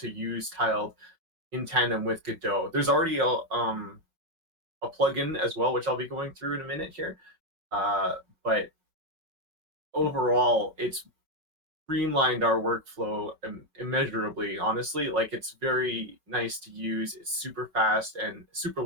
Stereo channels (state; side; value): late; left; 5.3 ms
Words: use tiled in tandem with Godot. There's already a plugin as well, which I'll be going through in a minute here. But overall, it's streamlined our workflow immeasurably. Honestly, like it's very nice to use. It's super fast and super